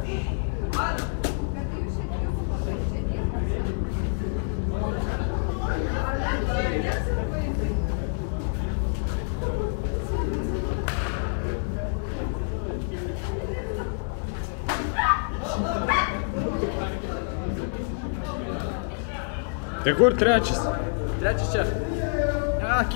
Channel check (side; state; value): right; silent; digital silence